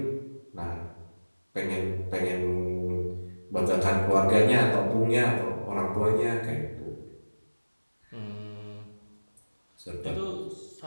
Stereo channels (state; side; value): inverted; both; correlation -1.00